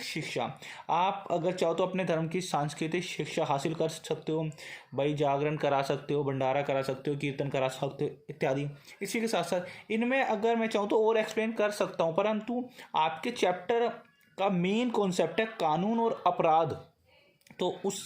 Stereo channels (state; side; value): identical; both; correlation 1.00